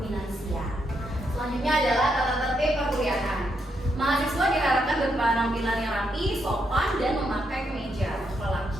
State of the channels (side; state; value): both; normal; correlation 0.79